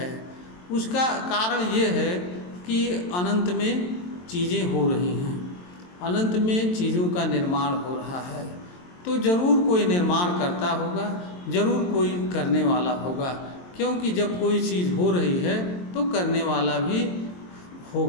उसका कारण ये है कि अनंत में चीज़ें हो रही हैं, अनंत में चीज़ों का निर्माण हो रहा है, तो ज़रूर कोई निर्माण करता होगा, ज़रूर कोई करने वाला होगा। क्योंकि जब कोई चीज़ हो रही है तो करने वाला भी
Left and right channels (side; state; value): right; late; 22 ms